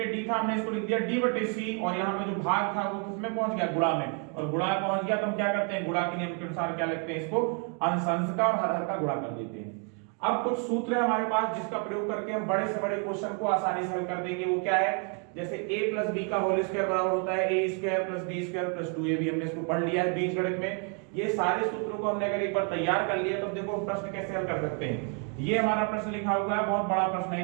था, हमने इसको लिख दिया d/c और यहाँ पे जो भाग था वो किसमें पहुंच गया, गुणा में, और गुणा पहुंच गया तो हम क्या करते हैं, गुणा के नियम के अनुसार क्या लिखते हैं, इसको अंश अंश का और हर हर का गुणा कर देते हैं। अब कुछ सूत्र है हमारे पास जिसका प्रयोग करके हम बड़े से बड़े क्वेश्चन को आसानी से हल कर देंगे। वो क्या है, जैसे a + b का होल स्क्वायर बराबर होता है a² + b² + 2ab, हमने इसको पढ़ लिया है बीजगणित में। ये सारे सूत्रों को हमने अगर एक बार तैयार कर लिया तो देखो प्रश्न कैसे हल कर सकते हैं। ये हमारा प्रश्न लिखा हुआ है, बहुत बड़ा प्रश्न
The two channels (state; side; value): quieter; left; 38.5 dB